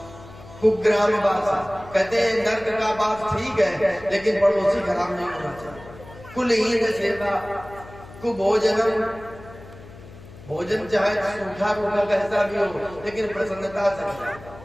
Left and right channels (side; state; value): left; noise; hum, 18 dB below the sound